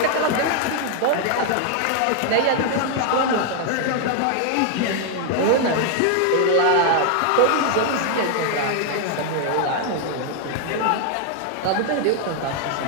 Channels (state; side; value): different; both; correlation 0.00